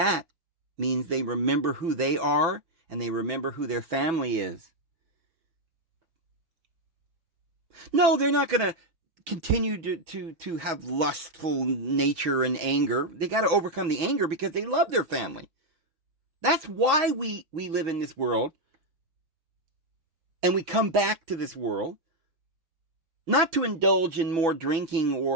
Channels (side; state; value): left; late; 6.1 ms